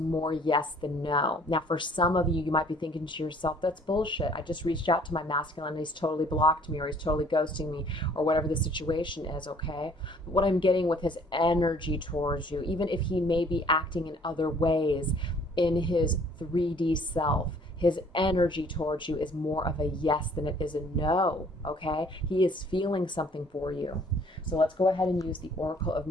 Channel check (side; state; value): both; normal; correlation 0.57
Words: yes than no. Now, for some of you, you might be thinking to yourself, that's bullshit. I just reached out to my masculine and he's totally blocked me, or he's totally ghosting me, or whatever the situation is, okay? But what I'm getting with his energy towards you, even if he may be acting in other ways in his 3D self, his energy towards you is more of a yes than it is a no, okay? He is feeling something for you. So let's go ahead and use the Oracle of